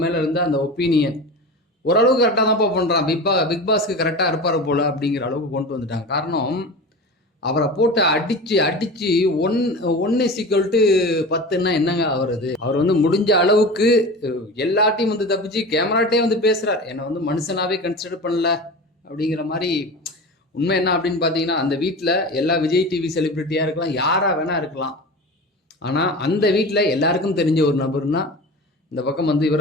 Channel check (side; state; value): both; normal; correlation 0.31